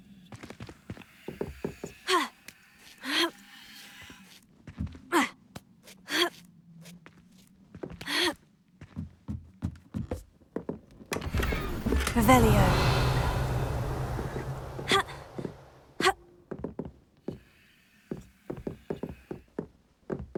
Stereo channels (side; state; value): both; identical; correlation 1.00